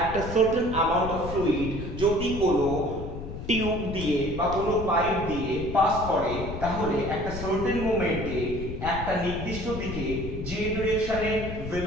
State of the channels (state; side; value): noise; left; rumble, 7 dB below the sound